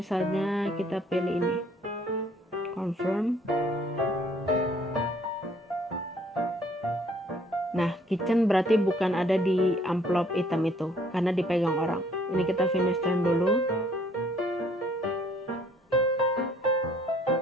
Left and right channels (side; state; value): both; normal; correlation 0.61